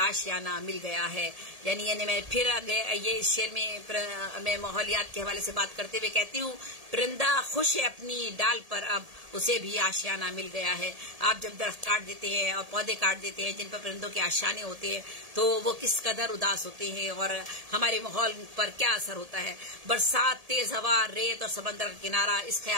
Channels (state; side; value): late; left; 1.7 ms